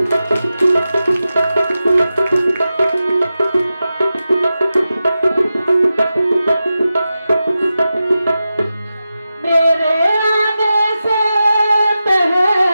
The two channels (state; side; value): inverted; both; correlation -0.92